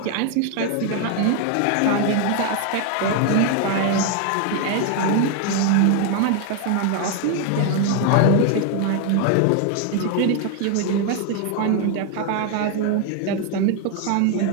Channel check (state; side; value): different; both; correlation 0.01